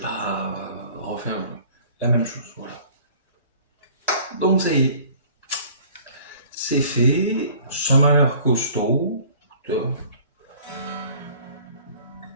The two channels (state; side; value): inverted; both; correlation -0.50